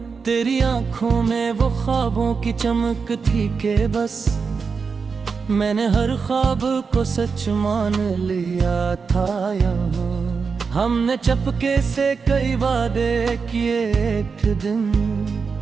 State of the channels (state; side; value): quieter; left; 5.3 dB